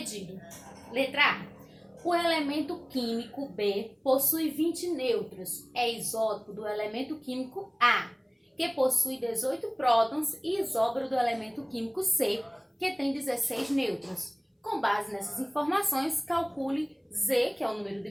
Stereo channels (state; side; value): identical; both; correlation 1.00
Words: Letra A. O elemento químico B possui 20 nêutrons. É isótopo do elemento químico A, que possui 18 prótons, e isóbaro do elemento químico C, que tem 16 nêutrons. Com base nessas informações, calcule Z, que é o número de